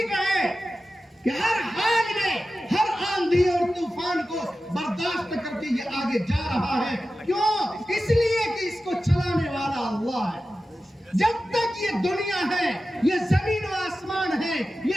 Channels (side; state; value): both; normal; correlation 0.94